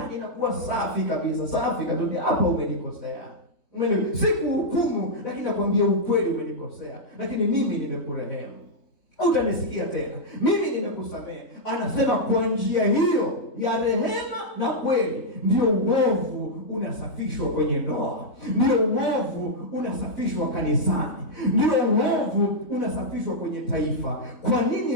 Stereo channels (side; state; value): right; late; 3.5 ms